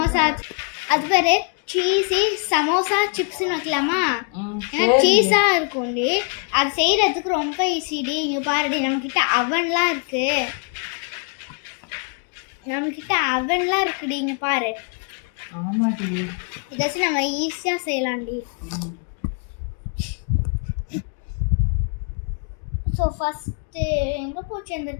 அது பேர் சீஸி சமோசா சிப்ஸ்ன்னு வைக்கலாமா? ஏன்னா சீஸாக இருக்கும்டி. அது செய்கிறதுக்கு ரொம்ப ஈஸிடி. இங்கே பாருடி, நம்மக்கிட்ட அவன்லாம் இருக்குது. இருக்குடி, இங்கே பாரு. ஆமாடி, இதாச்சும் நம்ம ஈஸியாக செய்யலாம்டி. ஸோ ஃபஸ்ட்டு எங்கே போச்சு அந்த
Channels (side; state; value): right; quieter; 38.5 dB